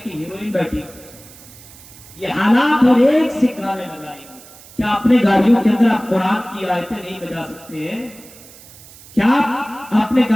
کی ہیروئن بیٹھی. یہ حالات, اور ایک سے گانے لگائیں گے. کیا اپنے گاڑیوں کے اندر آپ قرآن کی آیتیں نہیں بجا سکتے ہیں؟ کیا آپ اپنے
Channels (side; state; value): right; noise; hiss, 21 dB below the sound